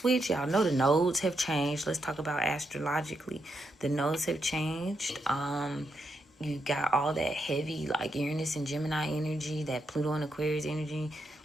y'all know the nodes have changed. Let's talk about astrologically. The nodes have changed. You got all that heavy, like Uranus and Gemini energy, that Pluto and Aquarius energy.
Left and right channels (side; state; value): both; normal; correlation 0.82